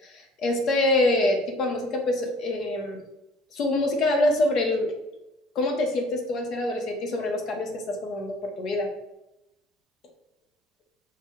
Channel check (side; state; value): both; normal; correlation 0.52